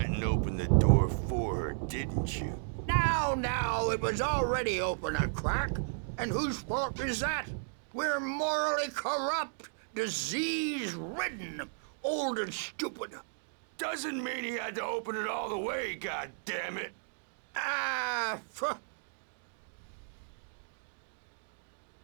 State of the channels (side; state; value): left; silent; digital silence